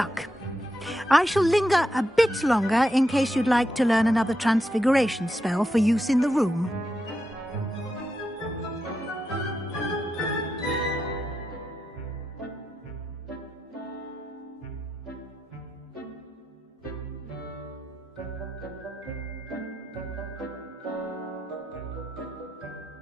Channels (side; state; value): both; normal; correlation 0.86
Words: I shall linger a bit longer in case you'd like to learn another transfiguration spell for use in the room.